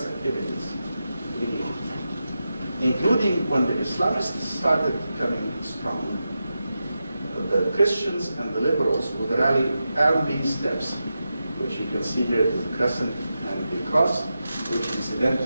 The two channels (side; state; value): both; inverted; correlation -0.89